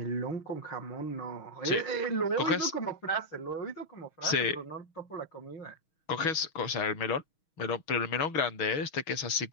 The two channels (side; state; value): right; late; 6.3 ms